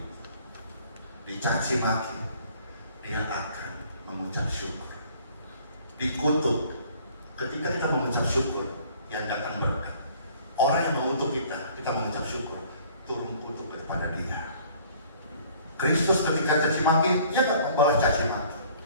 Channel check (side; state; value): both; inverted; correlation -0.55